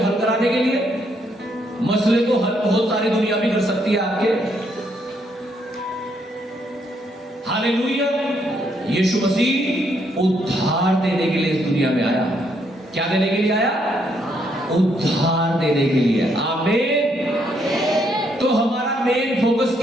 हल कराने के लिए। मसले तो हल बहुत सारी दुनिया भी कर सकती है आपके। हालेलुया। यीशु मसीह उद्धार देने के लिए इस दुनिया में आया। क्या देने के लिए आया? उद्धार देने के लिए। आमीन। तो हमारा मेन फोकस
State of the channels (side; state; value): both; normal; correlation 0.73